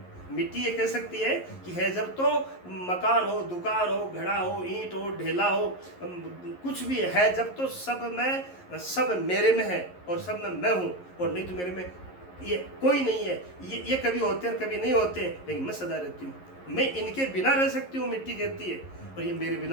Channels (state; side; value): late; right; 11 ms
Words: मिट्टी ये कह सकती है कि है जब तो मकान हो, दुकान हो, घड़ा हो, ईंट हो, ढेला हो, कुछ भी है जब तो सब मेरे में है, और सब में मैं हूँ, और नहीं तो मेरे में ये कोई नहीं है। ये कभी होते हैं कभी नहीं होते, लेकिन मैं सदा रहती हूँ। मैं इनके बिना रह सकती हूँ, मिट्टी कहती है, और ये मेरे